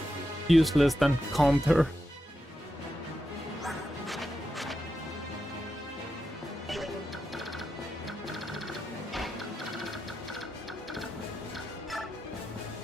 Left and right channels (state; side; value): normal; both; correlation 0.88